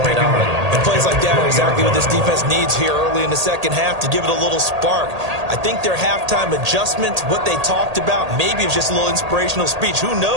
on. And plays like that are exactly what this defense needs here early in the second half to give it a little spark. I think their halftime adjustment, what they talked about, maybe it's just a little inspirational speech. Who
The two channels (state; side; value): late; left; 1.8 ms